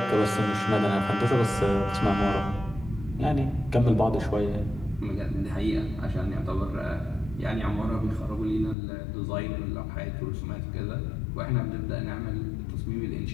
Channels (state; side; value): drops out; right; at 8.8 s